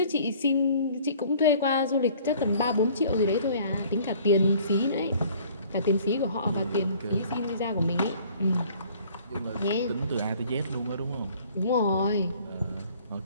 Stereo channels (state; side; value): inverted; both; correlation -0.54